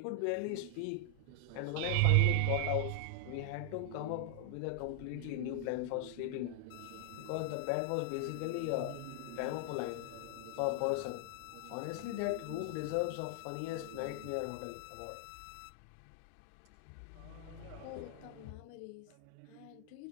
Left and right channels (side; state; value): both; different; correlation 0.00